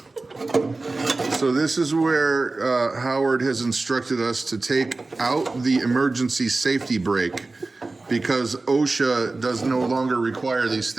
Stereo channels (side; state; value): left; quieter; 3.4 dB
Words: So this is where Howard has instructed us to take out the emergency safety brake, because OSHA does no longer require these